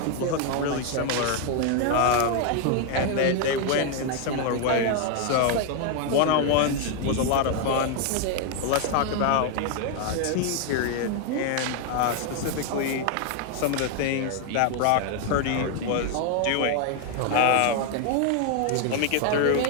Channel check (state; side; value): different; both; correlation 0.01